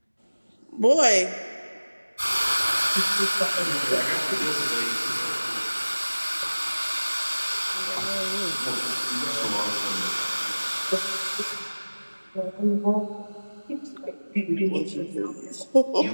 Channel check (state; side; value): inverted; both; correlation -1.00